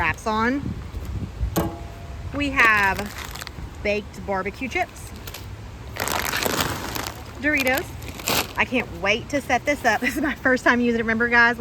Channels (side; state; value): both; identical; correlation 1.00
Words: on. We have baked barbecue chips, Doritos. I can't wait to set this up. This is my first time using it. Remember, guys,